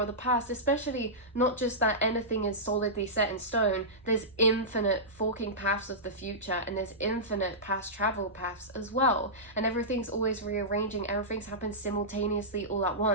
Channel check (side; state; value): both; normal; correlation -0.15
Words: the past, especially not just that anything is solidly set in stone. There's infinite forking paths of the future, and there's infinite past travel paths as well, and everything's always rearranging. Everything's happened simultaneously all at